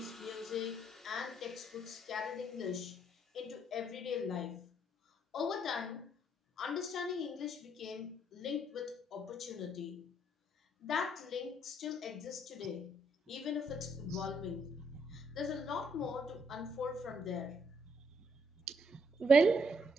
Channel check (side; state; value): both; normal; correlation 0.71